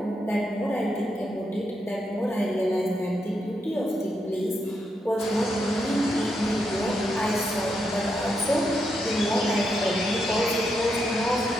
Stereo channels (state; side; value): normal; both; correlation 0.81